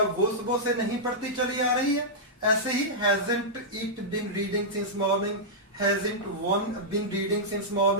सुबह से नहीं पढ़ती चली आ रही है। ऐसे ही hasn't it been reading since morning, hasn't one been reading since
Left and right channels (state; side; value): normal; both; correlation -0.10